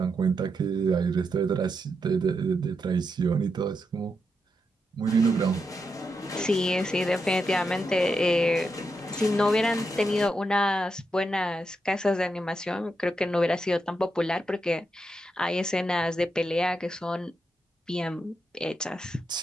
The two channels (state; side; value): normal; both; correlation 0.84